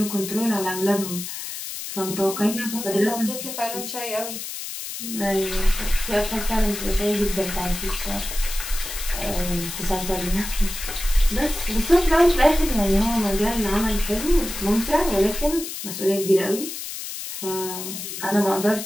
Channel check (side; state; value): left; noise; hiss, 7 dB below the sound